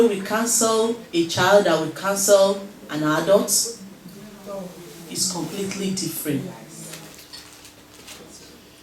we counsel a child that we counsel an adult? It's completely different.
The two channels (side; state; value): both; identical; correlation 1.00